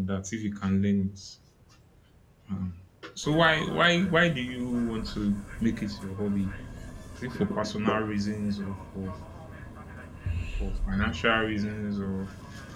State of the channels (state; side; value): identical; both; correlation 1.00